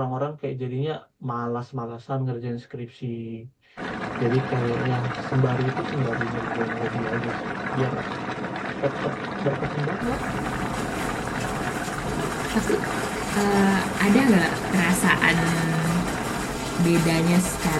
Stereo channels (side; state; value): both; identical; correlation 1.00